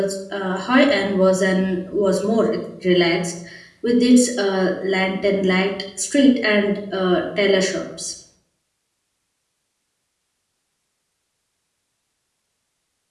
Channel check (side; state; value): both; identical; correlation 1.00